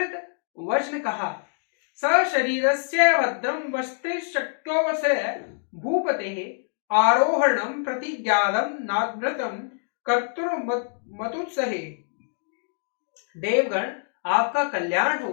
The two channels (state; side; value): silent; right; digital silence